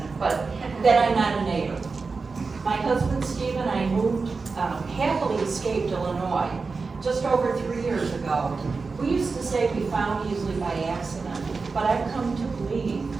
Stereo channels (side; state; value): left; quieter; 4.4 dB